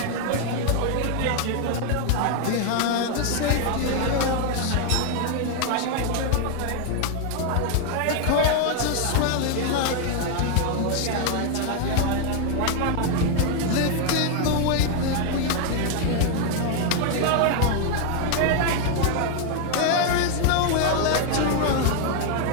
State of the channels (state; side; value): different; both; correlation 0.01